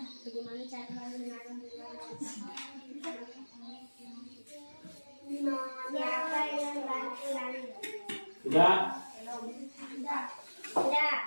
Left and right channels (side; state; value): both; inverted; correlation -1.00